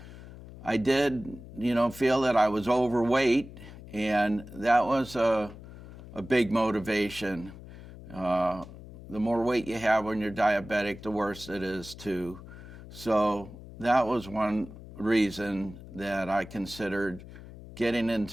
I did, feel that I was overweight, and that was a big motivation. The more weight you have when you're diabetic, the worse it is too. So that was one reason that I considered getting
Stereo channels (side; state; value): left; noise; hum, 16 dB below the sound